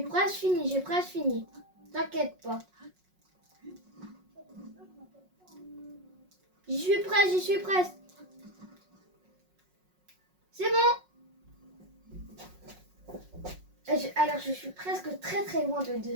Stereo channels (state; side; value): late; left; 5.5 ms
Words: presque fini. T'inquiète pas. J'y suis presque. C'est bon. Alors, je suis presque très très loin de